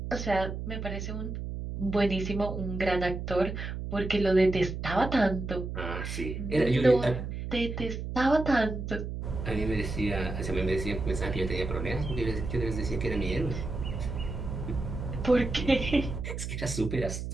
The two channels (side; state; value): right; noise; hum, 5 dB below the sound